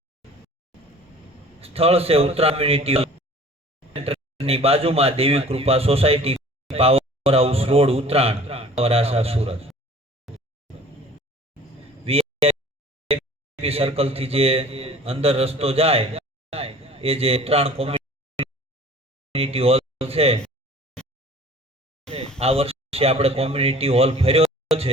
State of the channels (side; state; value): both; normal; correlation 0.47